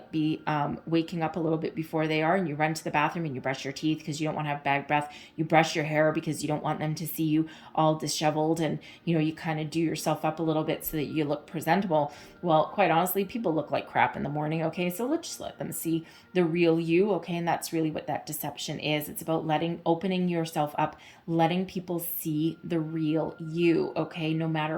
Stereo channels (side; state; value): both; identical; correlation 1.00